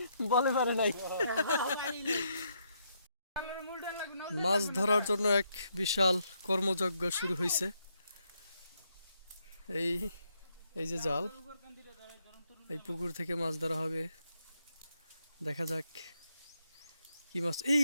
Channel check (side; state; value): both; inverted; correlation -0.76